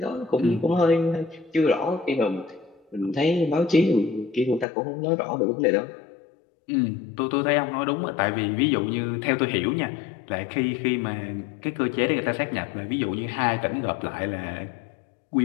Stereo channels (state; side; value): drops out; right; at 4.7 s